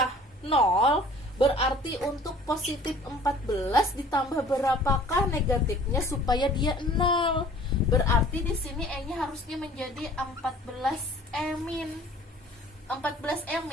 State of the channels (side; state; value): both; normal; correlation 0.50